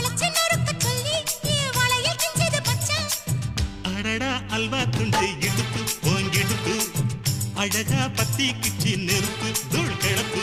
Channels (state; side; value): identical; both; correlation 1.00